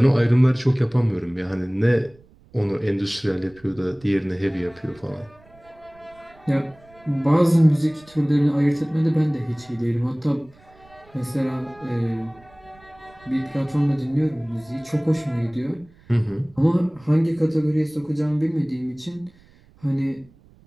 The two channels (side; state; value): right; noise; rumble, 27 dB below the sound